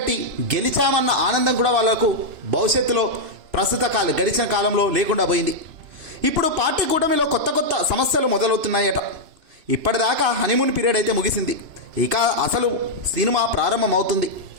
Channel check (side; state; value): left; late; 2.9 ms